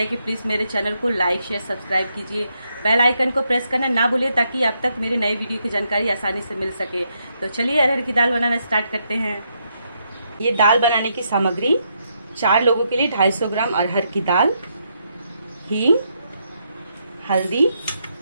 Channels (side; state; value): both; inverted; correlation -0.78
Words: कि प्लीज़ मेरे चैनल को लाइक शेयर सब्सक्राइब कीजिए। बेल आइकन को प्रेस करना ना भूलिए ताकि आप तक मेरे नए वीडियो की जानकारी आसानी से मिल सके। तो चलिए अरहर की दाल बनाना स्टार्ट करते हैं। ये दाल बनाने की सामग्री 4 लोगों के लिए 250 ग्राम अरहर की दाल, हींग, हल्दी,